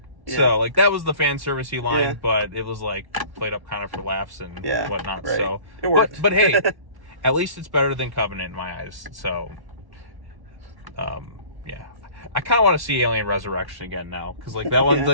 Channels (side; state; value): left; late; 1.1 ms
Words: Yeah. So like that was the fan servicey line, Yeah. but it was like played up kind of for laughs and whatnot. Right. So It worked. But hey, at least it's better than Covenant in my eyes. So yeah, I kind of want to see Alien Resurrection again now because like that one